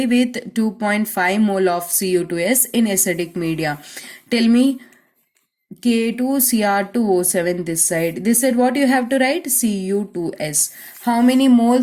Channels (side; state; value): both; identical; correlation 1.00